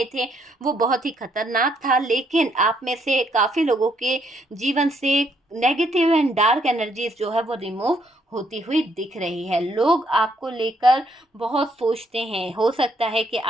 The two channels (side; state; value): both; normal; correlation 0.71